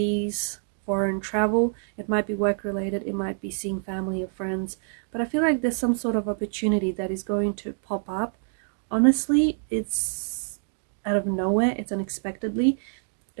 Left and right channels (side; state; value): left; silent; digital silence